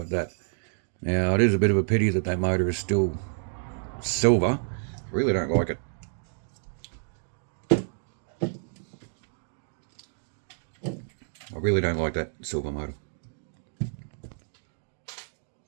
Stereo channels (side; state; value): left; silent; digital silence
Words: that. Now it is a bit of a pity that that motor is still silver. I really don't like it. I really don't like that silver motor.